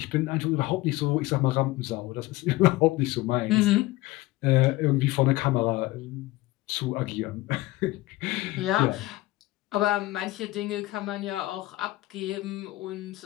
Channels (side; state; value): right; quieter; 18.7 dB